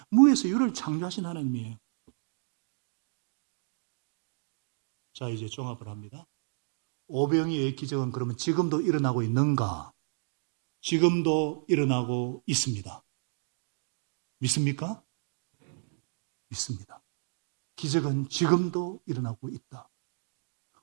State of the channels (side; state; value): left; silent; digital silence